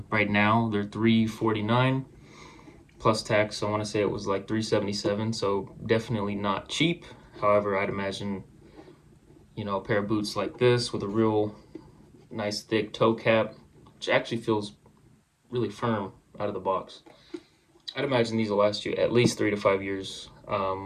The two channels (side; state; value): both; identical; correlation 1.00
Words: Right now they're $349 plus tax. I want to say it was like $377, so definitely not cheap. However, I'd imagine a pair of boots like this with a real nice thick toe cap, which actually feels really firm out of the box. I'd imagine these will last you at least 3 to 5 years